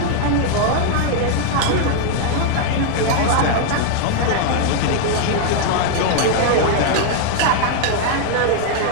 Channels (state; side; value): different; both; correlation 0.00